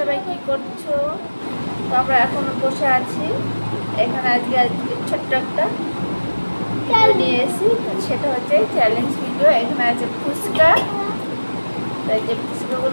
কি করছো? তো আমরা এখন বসে আছি এখানে। আজকে ছোট্ট একটা নিয়ে এসেছি, সেটা হচ্ছে চ্যালেঞ্জ ভিডিও। এখানে আছে ফুচকা, তাই যে ফুচকাগুলো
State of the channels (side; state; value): both; inverted; correlation -1.00